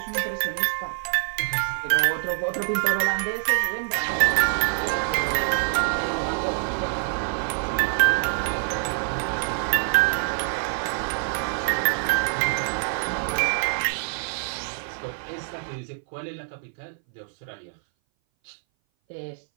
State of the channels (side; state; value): left; silent; 59 dB below the other